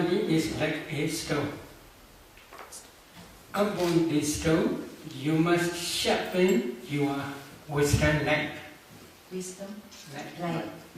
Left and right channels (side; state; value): both; identical; correlation 1.00